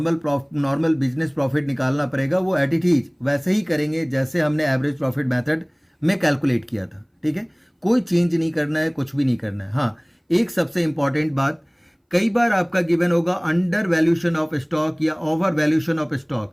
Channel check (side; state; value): both; identical; correlation 1.00